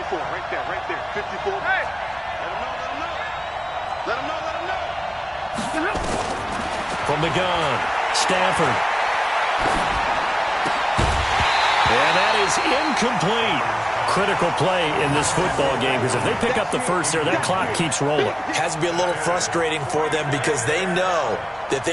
Right there. 54. Hey. Let him know. From the gun, Stafford. And that is incomplete. Critical play in this football game, because if they pick up the first there, that clock keeps rolling. Has to be a little frustrating for them because they know that if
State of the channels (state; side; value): identical; both; correlation 1.00